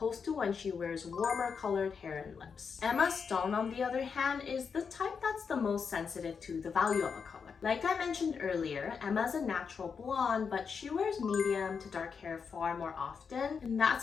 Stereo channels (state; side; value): quieter; right; 6.0 dB